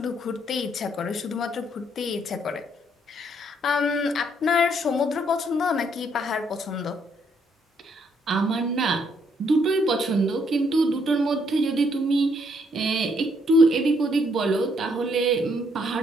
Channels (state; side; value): normal; both; correlation 0.71